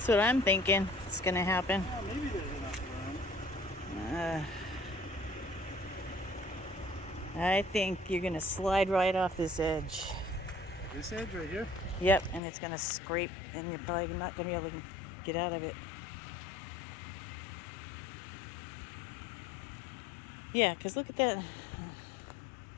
what I'm thinking. It's gonna happen. Well, maybe there's enough room. I think you're gonna slide right off this edge. This edge right here? Yep, and it's gonna scrape, and you're probably not gonna be able to get out of it. Yeah, because look at that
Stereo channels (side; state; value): right; drops out; at 12.4 s